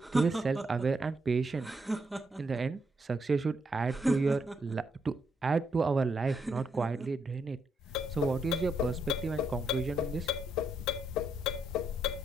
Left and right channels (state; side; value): normal; both; correlation 0.77